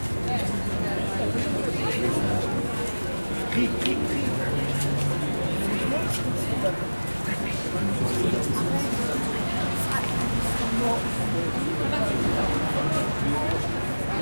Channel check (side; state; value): both; inverted; correlation -1.00